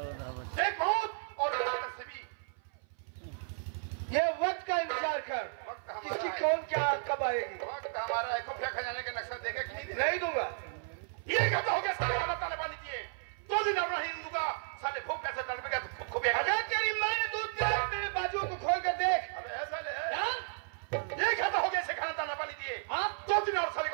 एक मौत और से भी। ये वक्त का इंतजार कर, किसकी कौन क्या कब आएगी। वक्त हमारा है, खुफिया खजाने के नक्शा देगा कि नहीं दूंगा। ये कहता हो गया साले खाना ताले पानी दिए, 2 दिन और नहीं दूंगा, साले भूख कैसे तड़पेगा तो खुफिया। अगर तेरी माँ ने दूध दिया तेरे बाजुओं को खोल कर देख। अबे ऐसा ले, ये कहता हो गया इसे खाना ताना पानी दिए, 2 दिन और साले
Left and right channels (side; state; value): left; silent; 55 dB below the other